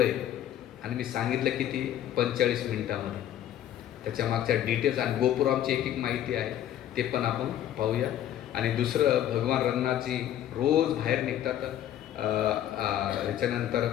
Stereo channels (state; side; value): quieter; right; 11.5 dB